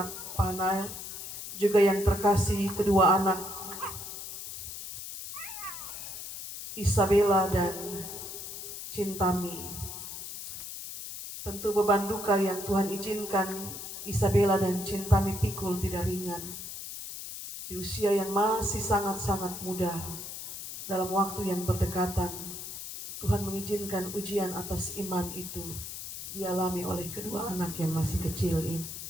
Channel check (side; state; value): left; noise; hiss, 9 dB below the sound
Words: Pahanail, juga yang terkasih kedua anak Isabella dan Cintami. Tentu beban duka yang Tuhan izinkan Isabella dan Cintami pikul tidak ringan. Di usia yang masih sangat-sangat muda, dalam waktu yang berdekatan, Tuhan mengizinkan ujian atas iman itu dialami oleh kedua anak yang masih kecil ini.